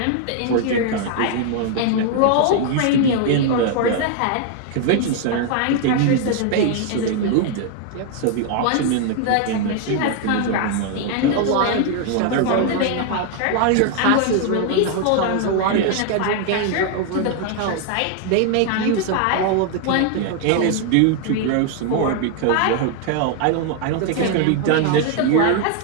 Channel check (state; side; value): different; both; correlation 0.00